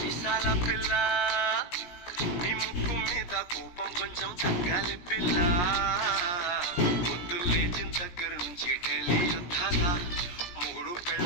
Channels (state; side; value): late; right; 17 ms